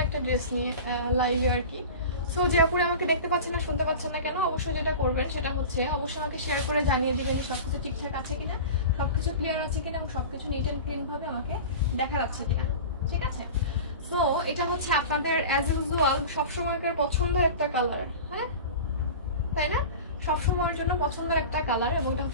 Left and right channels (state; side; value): inverted; both; correlation -0.33